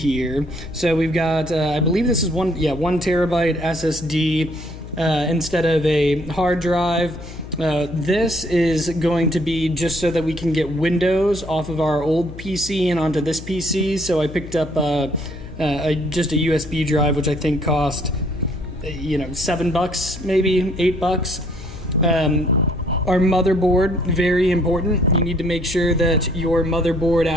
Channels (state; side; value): noise; left; hum, 13 dB below the sound